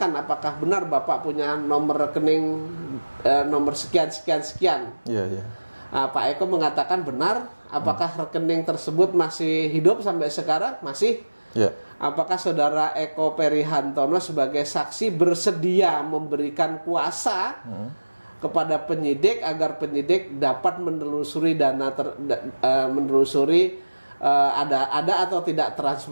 apakah benar Bapak punya nomor rekening nomor sekian. Pak Eko mengatakan benar. Apakah rekening tersebut masih hidup sampai sekarang? Masih. Apakah saudara Eko Perihantono sebagai saksi bersedia memberikan kuasa kepada penyidik agar penyidik dapat menelusuri ada atau tidak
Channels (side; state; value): both; inverted; correlation -1.00